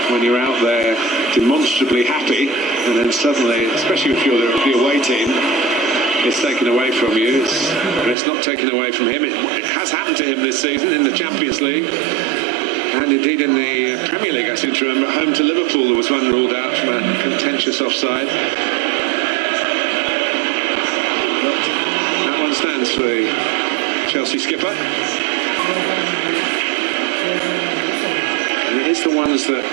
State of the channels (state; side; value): drops out; left; at 8.2 s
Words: when you're out there demonstrably happy, and then suddenly, especially if you're the away team, it's taken away from you. It's not taken away from him. It has happened to him this season in the Champions League. And indeed in the Premier League, I seem to remember, home to Liverpool, there was one ruled out from a contentious offside. But that one stands for the Chelsea skipper. And it is the ones that